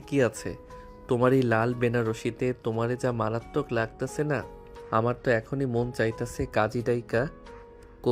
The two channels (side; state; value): both; identical; correlation 1.00